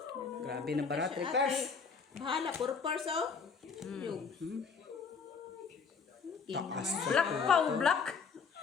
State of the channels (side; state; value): right; quieter; 5.6 dB